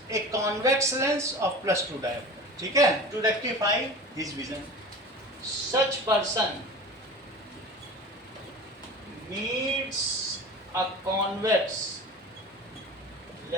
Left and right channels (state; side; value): normal; both; correlation 0.36